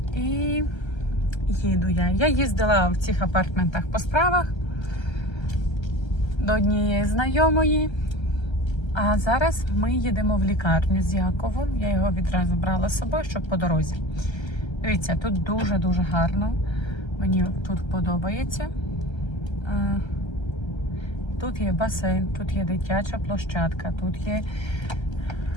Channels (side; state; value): right; late; 1.3 ms